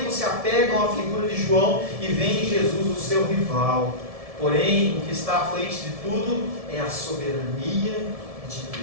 se apegam à figura de João e veem em Jesus o seu rival. Porém, o que está à frente de tudo é a soberania de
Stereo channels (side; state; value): left; late; 1.7 ms